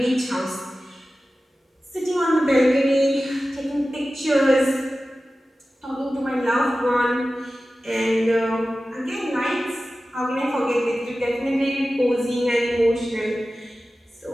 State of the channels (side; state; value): both; normal; correlation 0.95